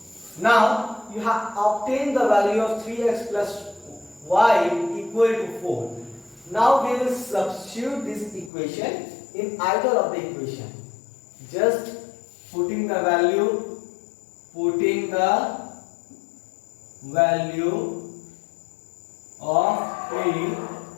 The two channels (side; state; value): right; drops out; at 8.5 s